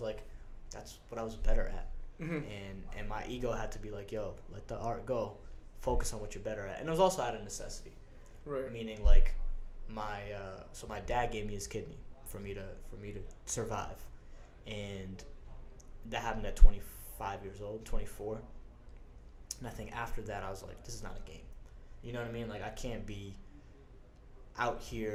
like, that's what I was better at. Mm-hmm. And my ego had to be like, yo, let the art go, focus on what you're better at. And it was also out of necessity, right? Meaning, like, my dad gave me his kidney for me to survive, and that happened at 25 years old, 24. And I think after that, I was like, this is not a game. You know what I mean? Like, I can't be out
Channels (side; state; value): both; identical; correlation 1.00